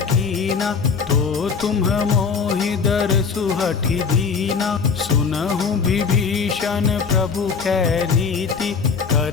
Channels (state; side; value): quieter; right; 5.6 dB